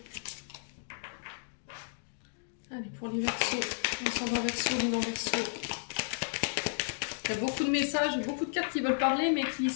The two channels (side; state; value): right; silent; digital silence